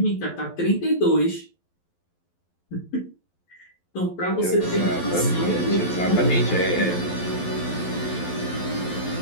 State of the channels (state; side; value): late; right; 11 ms